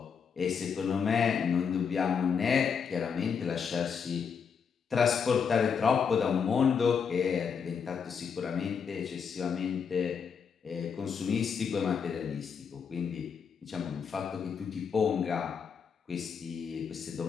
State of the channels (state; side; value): quieter; right; 6.5 dB